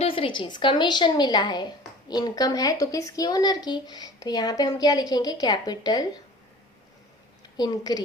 चीज, कमीशन मिला है, इनकम है तो किसकी, ओनर की, तो यहाँ पे हम क्या लिखेंगे, कैपिटल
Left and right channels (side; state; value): both; normal; correlation 0.43